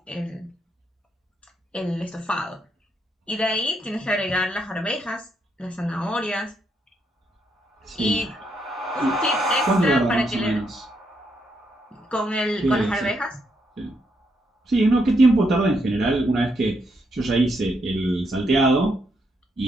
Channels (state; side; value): normal; both; correlation 0.77